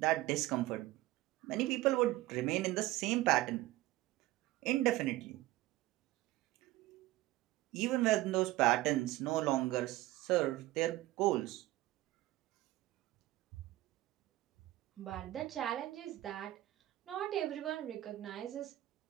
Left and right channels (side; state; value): left; quieter; 16.9 dB